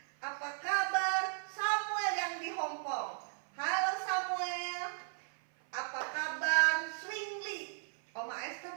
Apa kabar Samuel yang di Hong Kong? Halo Samuel. Apa kabar Swingli? Oma Esther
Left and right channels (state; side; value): silent; left; 54 dB below the other